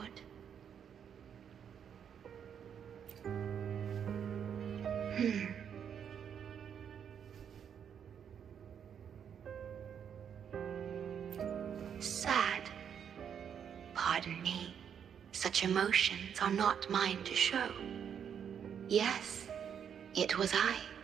Sad. Pardon me. Such emotions are not mine to show. Yes, it was I.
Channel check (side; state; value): left; quieter; 8.1 dB